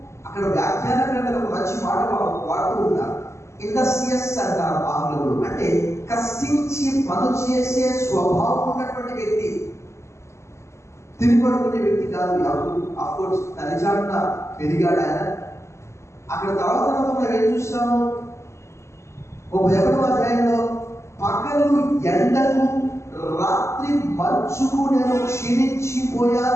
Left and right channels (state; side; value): late; right; 0.13 ms